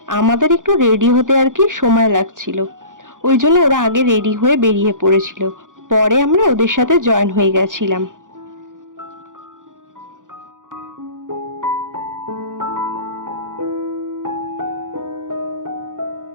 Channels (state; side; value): late; left; 0.88 ms